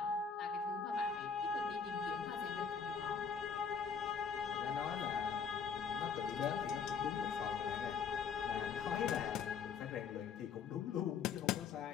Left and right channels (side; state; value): right; quieter; 6.2 dB